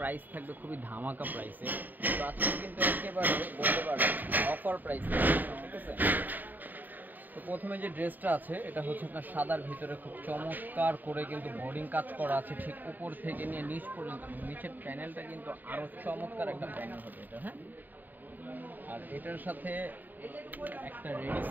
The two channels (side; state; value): left; late; 0.087 ms